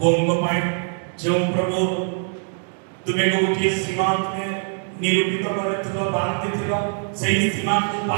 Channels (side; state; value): left; silent; 55 dB below the other